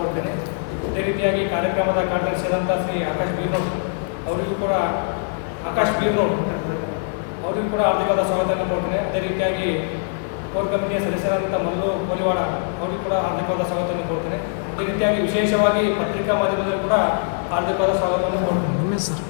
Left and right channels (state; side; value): silent; right; digital silence